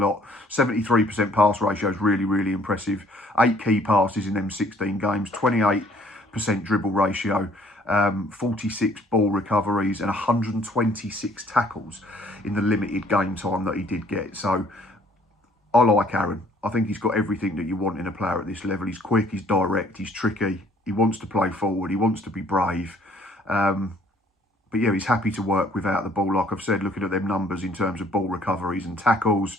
73% pass ratio is really, really impressive. 8 key passes in them 16 games, 28% dribble ratio, 46 ball recoveries and 126 tackles in the limited game time that he did get. So I like Aaron. I think he's got everything that you want in a player at this level. He's quick, he's direct, he's tricky. He wants to play forward, he wants to be brave. But yeah, he's happy to work without the ball. Like I've said, looking at them numbers in terms of ball recoveries and tackles,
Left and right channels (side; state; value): both; normal; correlation 0.60